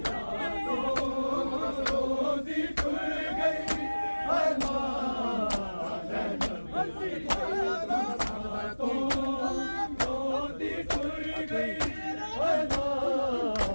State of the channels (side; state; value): both; inverted; correlation -1.00